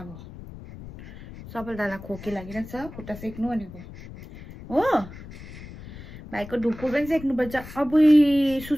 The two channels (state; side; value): noise; left; rumble, 15 dB below the sound